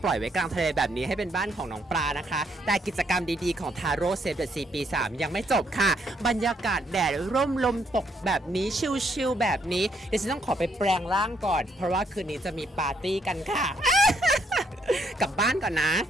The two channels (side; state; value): both; normal; correlation 0.72